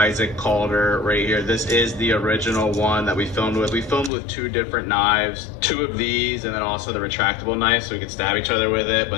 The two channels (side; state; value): right; drops out; at 4.1 s